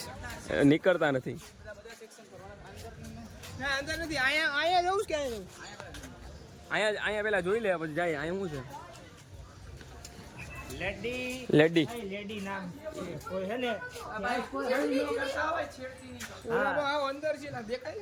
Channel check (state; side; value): identical; both; correlation 1.00